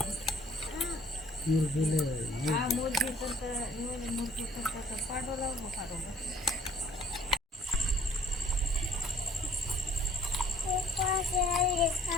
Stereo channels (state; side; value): normal; both; correlation 0.58